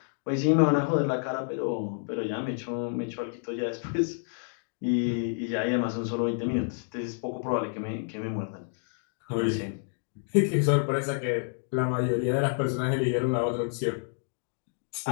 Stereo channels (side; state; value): right; silent; digital silence